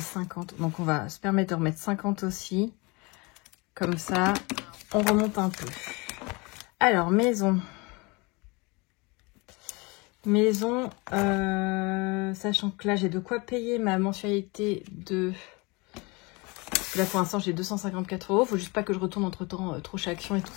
50. Donc, on va se permettre de remettre 50 aussi. Comme ça, on remonte un peu. Alors, maison. Maison, sachant que là, j'ai de quoi payer ma mensualité de... Parce que là, pour l'instant, j'ai 254 €. Faut juste pas que je retourne entre-temps trop chez Action et tout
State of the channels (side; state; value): right; quieter; 27.0 dB